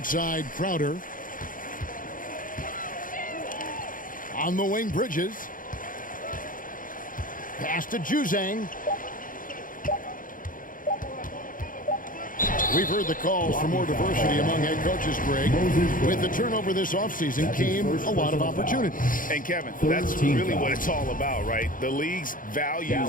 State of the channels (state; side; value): late; right; 0.40 ms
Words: Crowder. On the wing, Bridges. Pass to Juzang. We've heard the calls for more diversity among head coaches, Greg. With the turnover this offseason came a lot of opportunity. And Kevin, that's really what it's all about, right? The league's